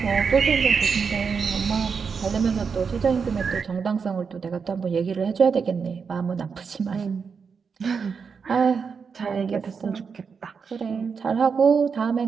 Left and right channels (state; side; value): quieter; left; 5.8 dB